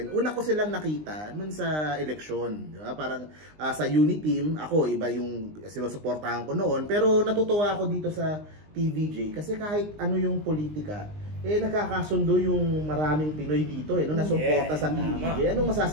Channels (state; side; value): late; left; 19 ms